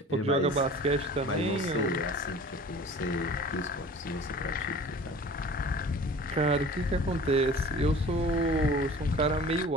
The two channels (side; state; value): both; normal; correlation 0.43